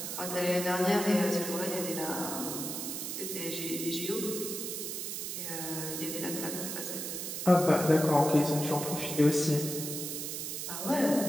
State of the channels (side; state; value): right; noise; hiss, 5 dB below the sound